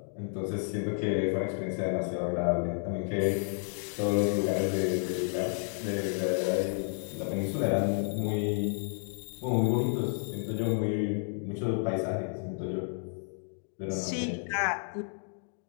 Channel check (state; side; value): silent; right; 57 dB below the other